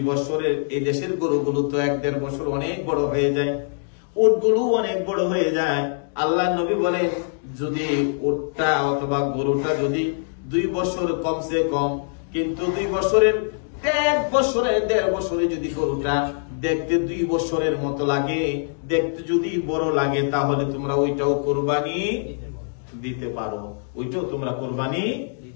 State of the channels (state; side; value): silent; right; digital silence